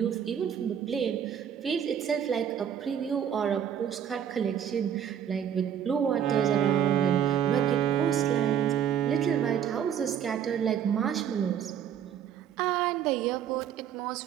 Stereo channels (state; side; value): quieter; left; 9.0 dB